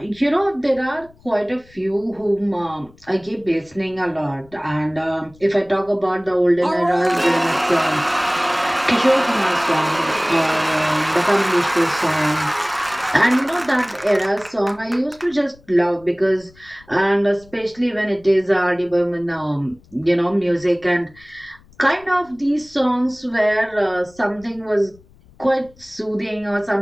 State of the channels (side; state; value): left; noise; rumble, 27 dB below the sound